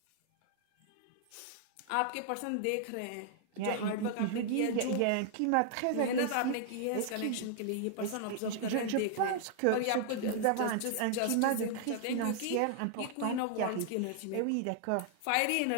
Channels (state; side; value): different; both; correlation 0.00